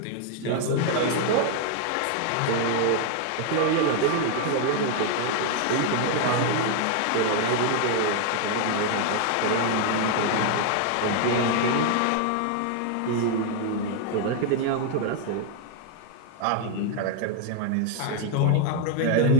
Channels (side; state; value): both; different; correlation 0.00